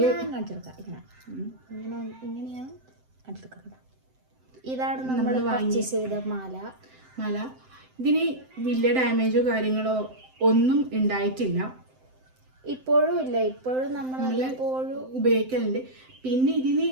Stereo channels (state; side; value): late; left; 7.8 ms